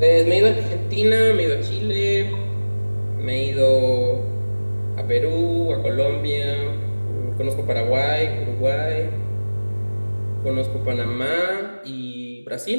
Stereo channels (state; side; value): inverted; both; correlation -1.00